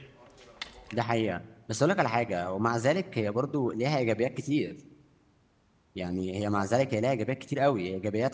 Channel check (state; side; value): identical; both; correlation 1.00